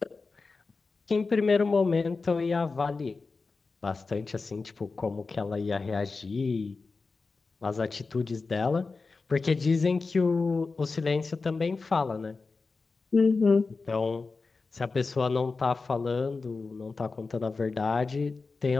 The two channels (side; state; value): right; quieter; 4.1 dB